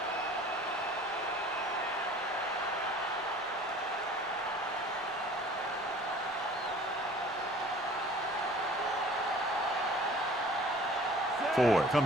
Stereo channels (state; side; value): normal; both; correlation 0.48